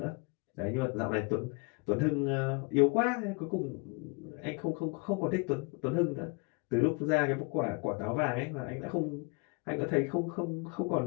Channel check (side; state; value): right; quieter; 30.8 dB